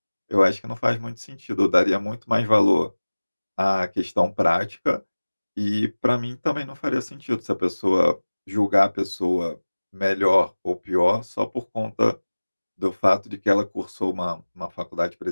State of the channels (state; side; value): inverted; both; correlation -1.00